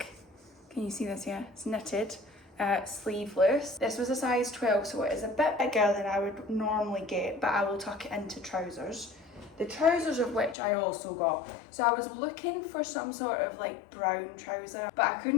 Can you see this? Yeah, it's knitted. Sleeveless. This was a size 12, so it is a bit bigger than I would normally get, but I will tuck it into trousers. The trousers of which I also got. So I was looking for some sort of like brown trouser, but I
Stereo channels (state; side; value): drops out; right; at 10.6 s